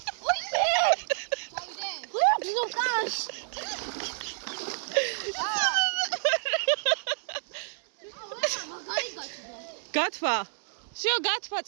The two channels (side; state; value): left; silent; digital silence